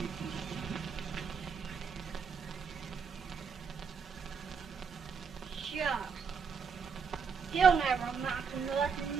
Shucks. He'll never amount to nothing,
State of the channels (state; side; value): quieter; left; 5.9 dB